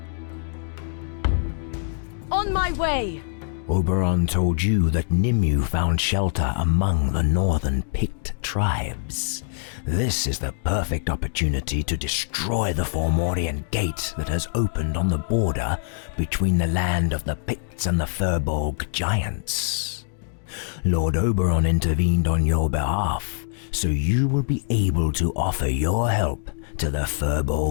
On my way! Oberon told you that Nimue found shelter among the northern Pict tribes. This is the perfect opportunity to destroy the Fomorian gate that has opened on the border between the land of the Picts and the Furbolg giants. Lord Oberon intervened on your behalf, so you will be able to offer your help to the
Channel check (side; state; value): right; silent; digital silence